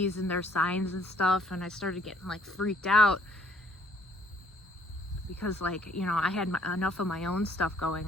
and their signs and stuff. And I started getting like freaked out because like, you know, I had enough of my own stuff going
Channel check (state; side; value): normal; both; correlation 0.62